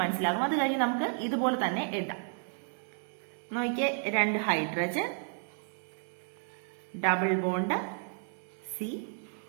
മനസ്സിലാകും. അത് കഴിഞ്ഞ് നമുക്ക് ഇതുപോലെ തന്നെ എഴുതാം. നോക്കിയേ, 2 hydrogen, double bond C,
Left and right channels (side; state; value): left; silent; 56 dB below the other